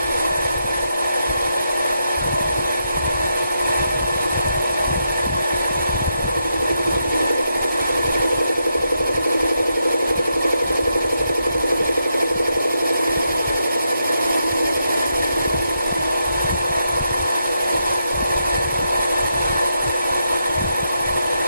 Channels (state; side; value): inverted; both; correlation -0.83